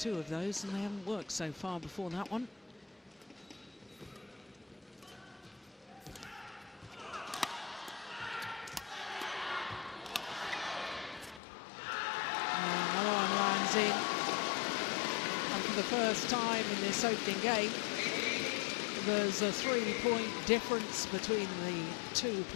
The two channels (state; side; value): drops out; right; at 11.4 s